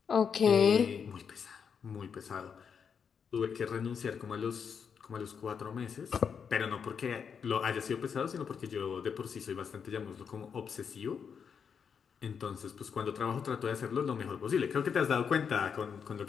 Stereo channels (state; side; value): quieter; right; 6.7 dB